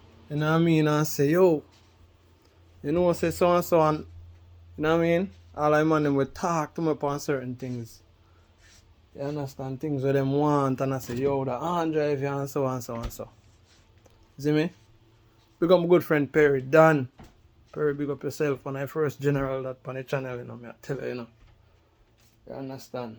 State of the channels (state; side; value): identical; both; correlation 1.00